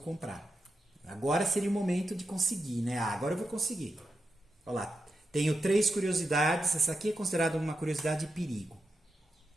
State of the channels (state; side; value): normal; both; correlation 0.87